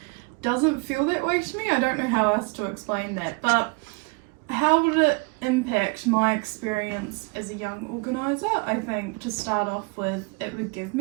doesn't feel that way to me. I don't know how else to explain that, but how would it impact my experience as a young organiser? I think to start off with, it would give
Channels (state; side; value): quieter; left; 30.4 dB